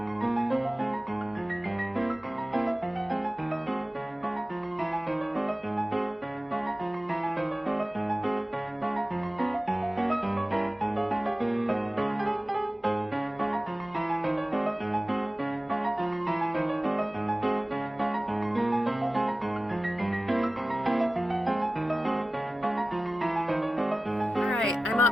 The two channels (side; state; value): both; normal; correlation 0.96